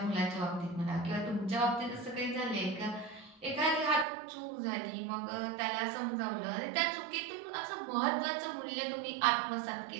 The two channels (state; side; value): drops out; left; at 4.0 s